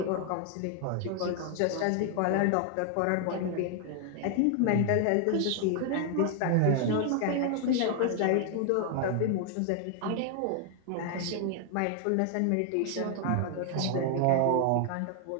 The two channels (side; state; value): both; different; correlation 0.00